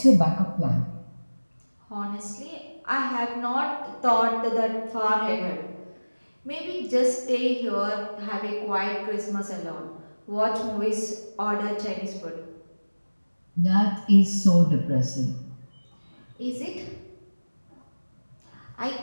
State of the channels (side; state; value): both; inverted; correlation -1.00